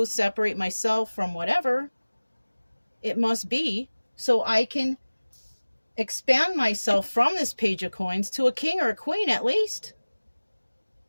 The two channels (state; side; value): inverted; both; correlation -1.00